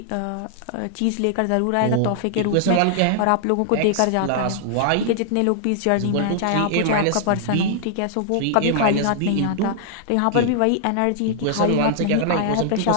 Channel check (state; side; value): different; both; correlation -0.01